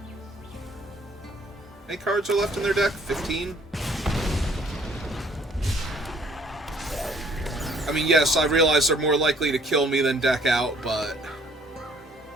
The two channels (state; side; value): normal; both; correlation 0.60